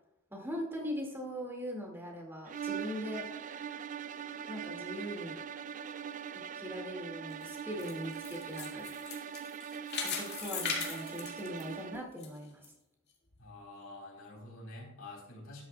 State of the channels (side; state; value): both; normal; correlation 0.28